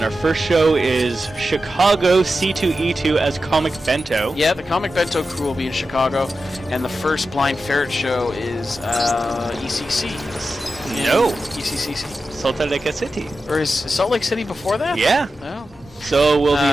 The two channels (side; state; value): both; normal; correlation 0.91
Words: our first show is Chicago C2E2 as Comic Bento. Yeah, the Comic Bento crew will be in Chicago, and the first Blind Ferret show is ECC. No. ECCC. Salt Lake City. Or is Salt Lake City before that? Yeah. Oh. So we'll